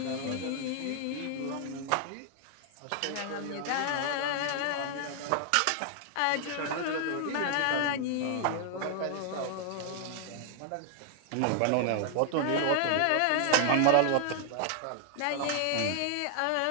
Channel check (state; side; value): different; both; correlation 0.00